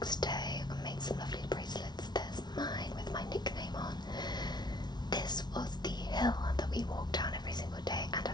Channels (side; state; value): right; late; 0.20 ms